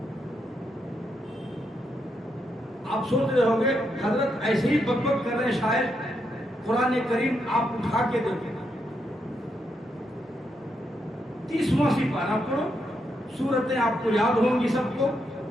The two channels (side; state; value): both; normal; correlation 0.81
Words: آپ سوچ رہے ہوں گے حضرت ایسے ہی بک بک کر رہے ہیں، شاید قرآن کریم آپ اٹھا کے دیکھیں، 30واں سپارہ پڑھو، سورتیں آپ کو یاد ہوں گی سب کو،